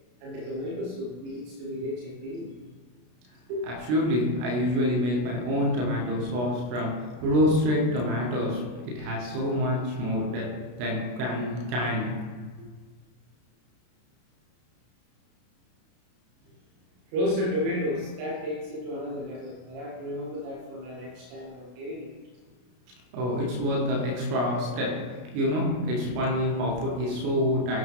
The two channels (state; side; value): late; left; 33 ms